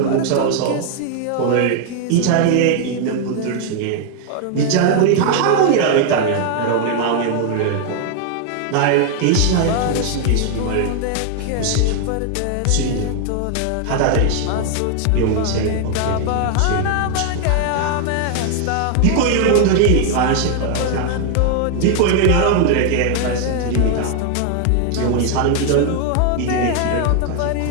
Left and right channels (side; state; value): both; different; correlation 0.00